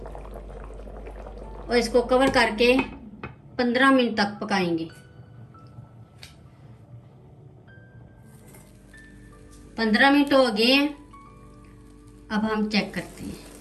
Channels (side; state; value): both; identical; correlation 1.00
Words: और इसको कवर करके 15 मिनट तक पकाएंगे। 15 मिनट हो गए हैं। अब हम चेक करते हैं।